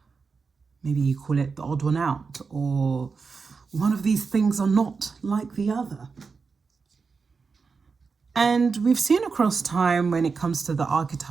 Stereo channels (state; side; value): quieter; left; 4.9 dB